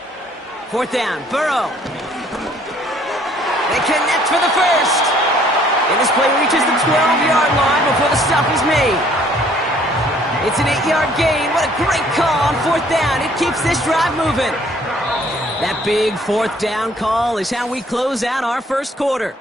4th down, Burrow. They connect for the first. And this play reaches the 12-yard line before the stop is made. It's an 8-yard gain. What a great call on 4th down. It keeps this drive moving. That big 4th down call is how we close out our first quarter.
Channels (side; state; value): both; normal; correlation 0.60